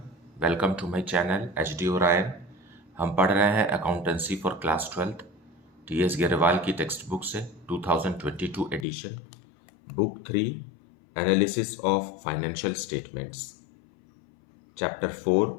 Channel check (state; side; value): drops out; right; at 8.8 s